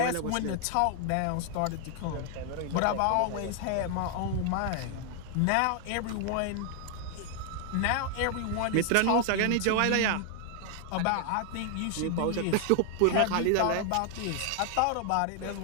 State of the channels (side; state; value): both; different; correlation 0.00